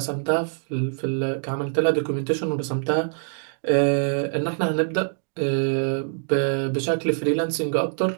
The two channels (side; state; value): left; silent; digital silence